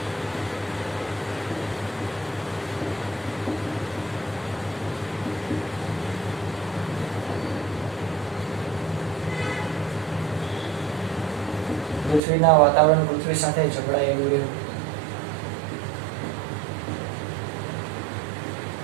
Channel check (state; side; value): drops out; left; at 12.2 s